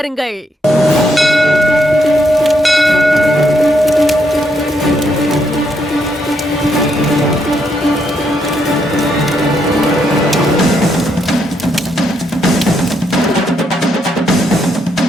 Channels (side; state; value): both; normal; correlation 0.76